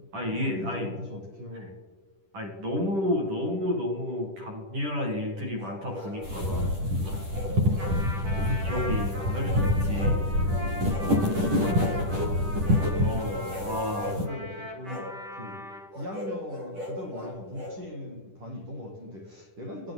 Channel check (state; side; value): late; left; 10 ms